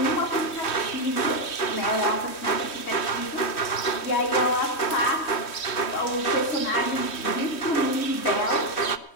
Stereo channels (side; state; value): right; late; 3.1 ms